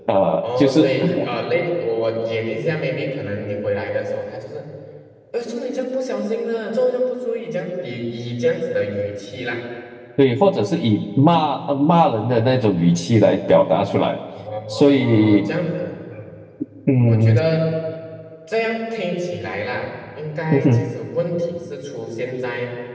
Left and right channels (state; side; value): identical; both; correlation 1.00